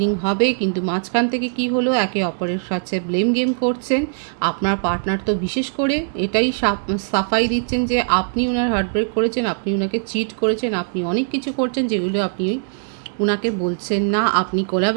হবে, কিন্তু মাঝখান থেকে কি হলো, একে অপরের সাথে ব্লেম গেম করছেন। আপনার পার্টনার তো বিশেষ করে এটাই সাফাই দিচ্ছেন যে আপনি ওনার হার্টব্রেক করেছেন, আপনি ওনাকে চিট করেছেন, আপনি অনেক কিছু করছেন যেগুলো আপনি উনাকে বলছেন না। আপনি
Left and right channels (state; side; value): silent; left; digital silence